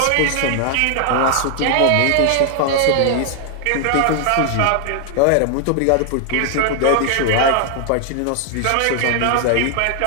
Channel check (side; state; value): both; different; correlation 0.00